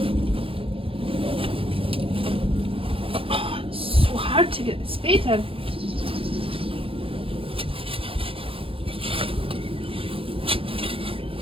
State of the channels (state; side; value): late; left; 0.26 ms